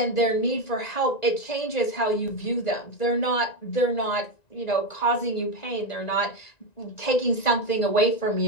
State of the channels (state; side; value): late; right; 1.9 ms